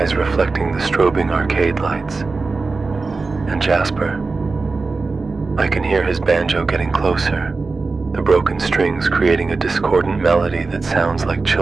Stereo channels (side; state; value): left; quieter; 4.0 dB